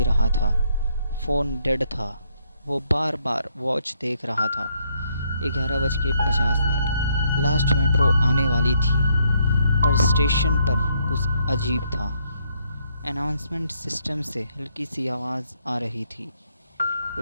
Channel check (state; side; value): inverted; both; correlation -0.72